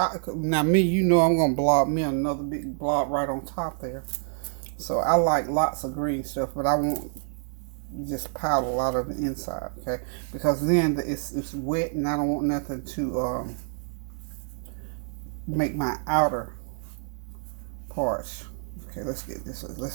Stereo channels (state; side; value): silent; left; 60 dB below the other